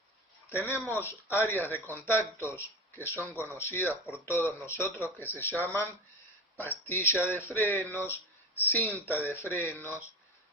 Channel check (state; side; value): normal; both; correlation 0.29